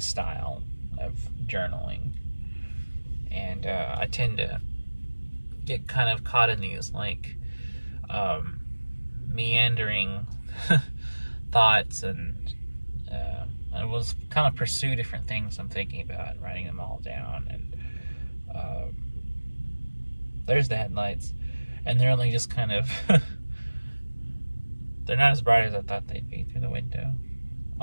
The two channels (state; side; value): inverted; both; correlation -1.00